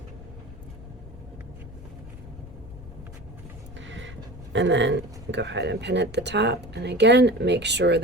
And then go ahead and pin at the top, and again make sure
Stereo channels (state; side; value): noise; left; rumble, 16 dB below the sound